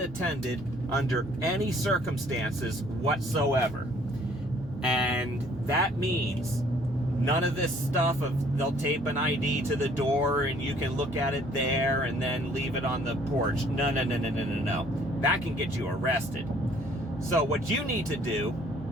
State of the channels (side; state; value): both; normal; correlation 0.59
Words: under any circumstances whatsoever. And that means none of this stuff of they'll tape an ID to the door and you can look at it there and then leave it on the porch. No. That can get you arrested. So what you need to do